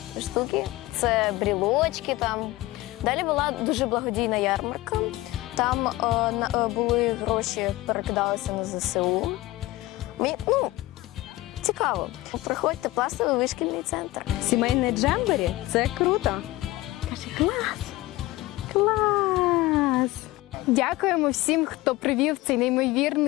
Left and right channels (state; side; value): quieter; right; 18.6 dB